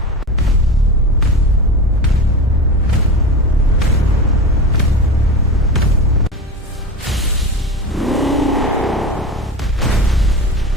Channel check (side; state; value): both; normal; correlation 0.28